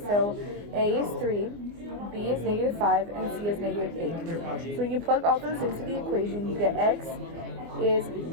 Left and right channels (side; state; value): left; late; 24 ms